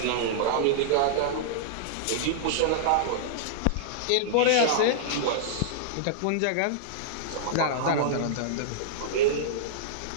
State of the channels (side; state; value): both; different; correlation -0.02